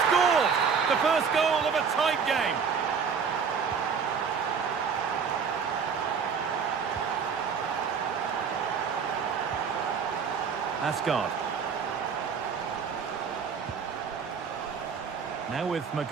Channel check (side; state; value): left; quieter; 6.2 dB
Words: scored! The first goal of a tight game. Asgard. Now with